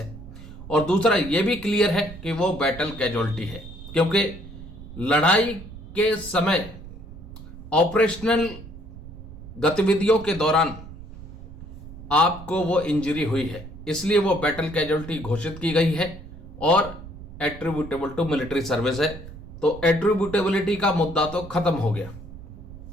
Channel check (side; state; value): right; noise; rumble, 14 dB below the sound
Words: और दूसरा ये भी क्लियर है कि वो बैटल कैजुअलिटी है, क्योंकि लड़ाई के समय ऑपरेशनल गतिविधियों के दौरान आपको वो इंजरी हुई है, इसलिए वो बैटल कैजुअलिटी घोषित की गई है और एट्रीब्यूटेबल टू मिलिट्री सर्विस है। तो एट्रीब्यूटेबिलिटी का मुद्दा तो खत्म हो गया।